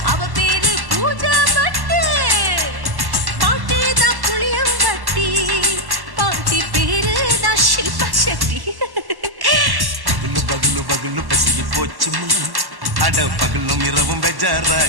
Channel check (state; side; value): late; left; 1.1 ms